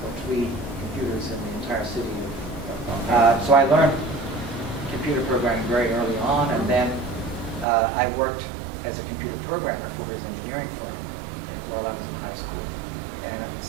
3 computers in the entire city. So I learned computer programming very early on, and then I worked as a computer programmer for his engineering firm while I was in high school. And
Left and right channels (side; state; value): left; drops out; at 7.7 s